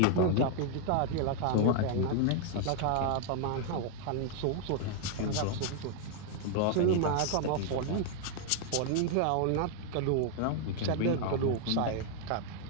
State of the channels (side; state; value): both; different; correlation 0.00